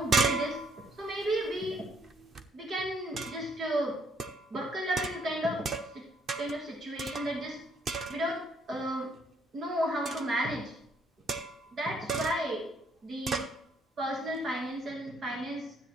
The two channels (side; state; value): both; normal; correlation 0.68